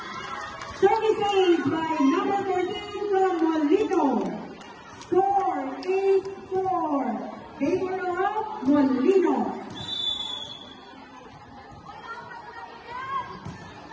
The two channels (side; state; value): both; identical; correlation 1.00